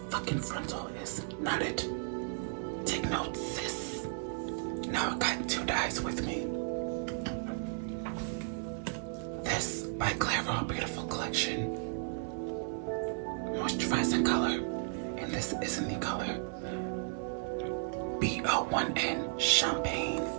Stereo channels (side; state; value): left; silent; 55 dB below the other